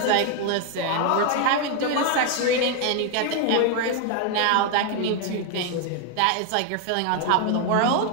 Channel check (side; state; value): both; different; correlation 0.01